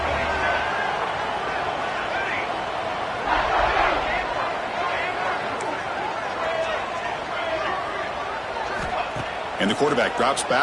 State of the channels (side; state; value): both; identical; correlation 1.00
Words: And the quarterback drops